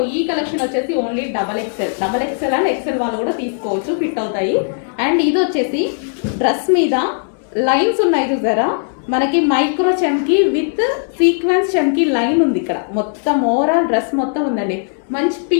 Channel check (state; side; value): silent; right; digital silence